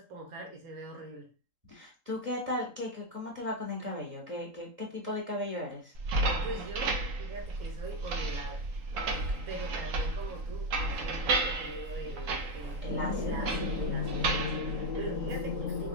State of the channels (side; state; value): left; late; 3.8 ms